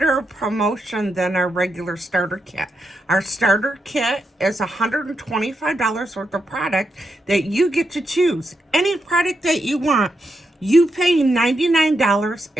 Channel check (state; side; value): normal; both; correlation 0.84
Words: promotion than our regular starter kit. Our starter kit is $125 worth of product that you get to choose. Any product that you want, you pay $99